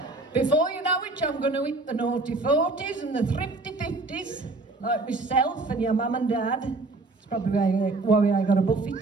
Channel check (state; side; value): quieter; left; 3.3 dB